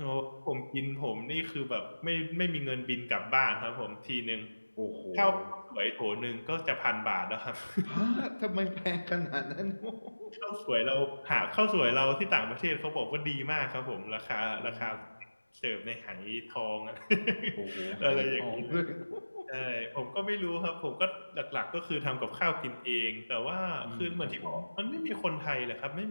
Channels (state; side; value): inverted; both; correlation -1.00